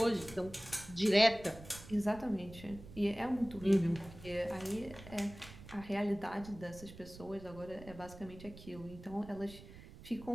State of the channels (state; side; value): noise; right; rumble, 16 dB below the sound